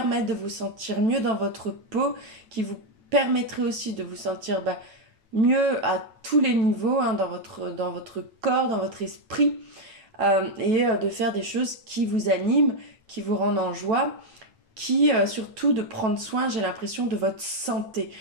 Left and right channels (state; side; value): late; left; 8.9 ms